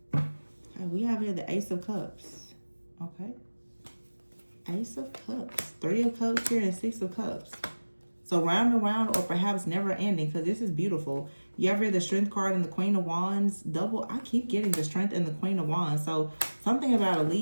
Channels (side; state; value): both; inverted; correlation -1.00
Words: We have here the Ace of Cups. Okay. Ace of Cups. 3 of Cups here and 6 of Cups. So round and round, or perhaps never ending, because this is beautiful. You have here the Strength card and the Queen of Wands. Double. I keep getting the Strength and the Queen of Wands. So something about a